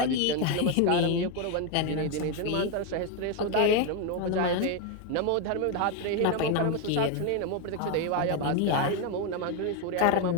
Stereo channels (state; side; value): different; both; correlation 0.02